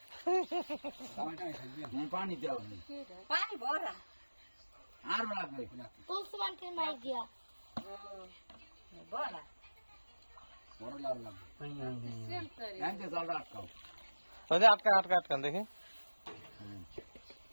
পানি দেওয়া পানি ভরা আর লাগবে তুলসী মাই দিয়া ভরা বড় লাগবে এনতে জলটা আটকাও। ওই যে আটকা আটকা আটকান দেখি।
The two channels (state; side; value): inverted; both; correlation -1.00